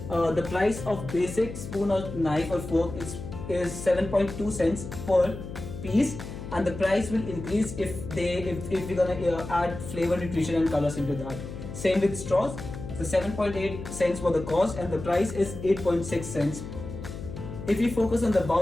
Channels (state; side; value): noise; left; hum, 10 dB below the sound